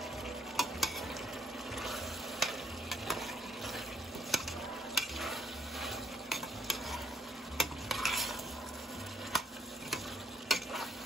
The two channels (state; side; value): normal; both; correlation 0.70